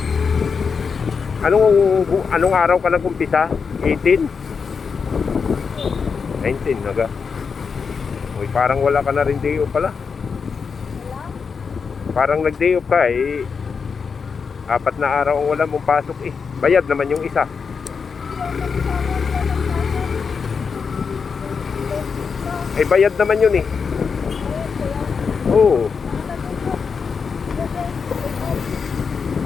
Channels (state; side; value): quieter; right; 5.6 dB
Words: Anong araw ka nag-umpisa? 18? 19 naga. Uy, parang wala ka na rin day off pala. Parang nag-day off ka eh. 4 na araw ang wala mong pasok eh. Bayad naman yung isa. Eh bayad naman yun eh. Oo.